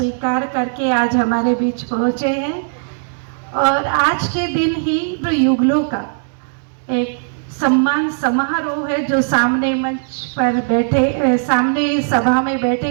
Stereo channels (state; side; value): silent; left; 67 dB below the other